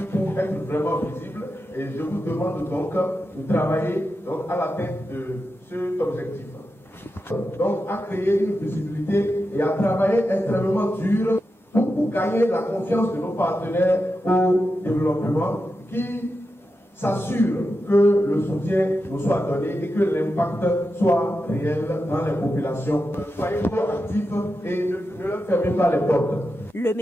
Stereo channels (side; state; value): right; late; 10 ms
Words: pour être vraiment visible et je vous demande donc de travailler à l'atteinte de cet objectif. Donc à créer une visibilité et à travailler extrêmement dur pour gagner la confiance de nos partenaires au développement qui s'assure que le soutien nous soit donné et que l'impact soit réel dans les populations. Soyez proactifs et ne leur fermez pas les portes. Le